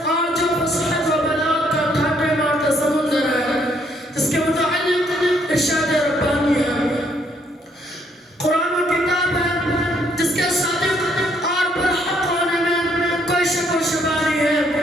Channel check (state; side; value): normal; both; correlation 0.69